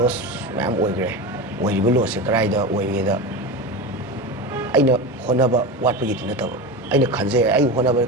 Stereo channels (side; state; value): both; normal; correlation 0.24